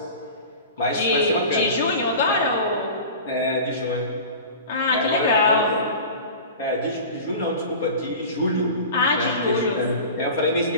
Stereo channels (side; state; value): both; inverted; correlation -0.35